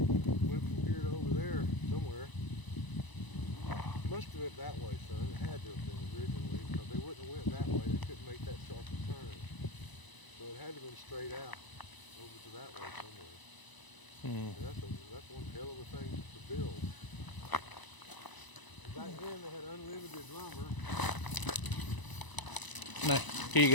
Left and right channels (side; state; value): right; late; 1.0 ms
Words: Went from here to over there somewhere. Must have went that way, son. It had to have been originally, because they wouldn't have went that way. They couldn't make that sharp a turn. So it had to have been straight out over to that way somewhere. And that's one hell of a thing to build. Back then they had unlimited lumber. No, here you